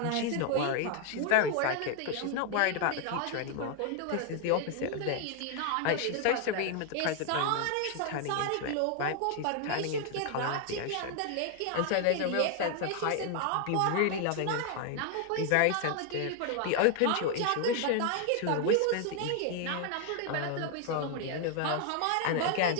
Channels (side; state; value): both; different; correlation 0.00